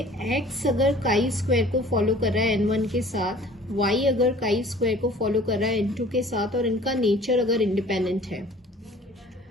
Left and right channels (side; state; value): both; normal; correlation 0.49